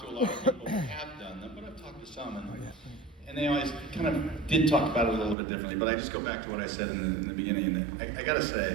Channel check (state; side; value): drops out; left; at 5.4 s